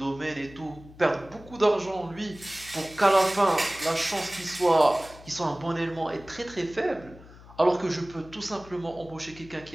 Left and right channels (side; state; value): left; noise; hum, 20 dB below the sound